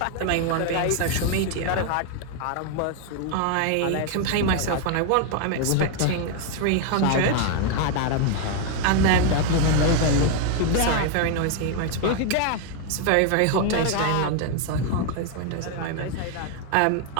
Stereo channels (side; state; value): both; different; correlation 0.01